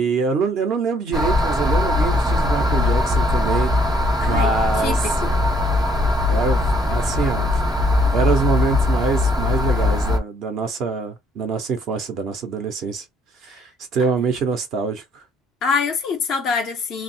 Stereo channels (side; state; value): both; normal; correlation 0.65